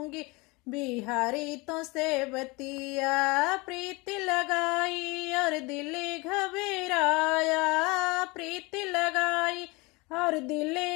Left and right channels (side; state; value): right; quieter; 25.6 dB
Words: बिहारी तो से बतिया। प्रीत लगाई और दिल घबराया, प्रीत लगाई और दिल